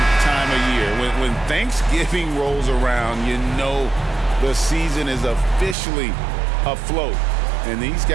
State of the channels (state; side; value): drops out; left; at 5.8 s